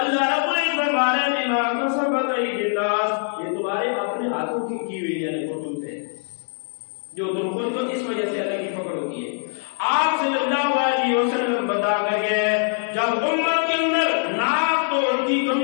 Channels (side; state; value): right; silent; 58 dB below the other